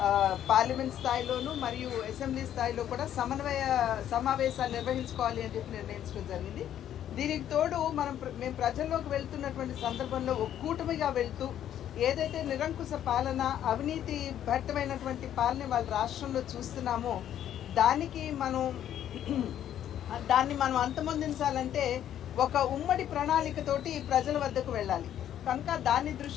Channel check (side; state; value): right; quieter; 10.7 dB